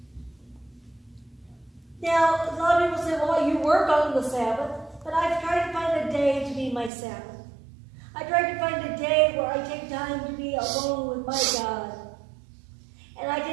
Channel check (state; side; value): drops out; left; at 6.9 s